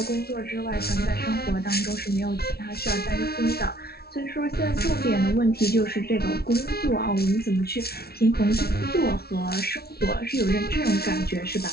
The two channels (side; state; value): right; late; 0.45 ms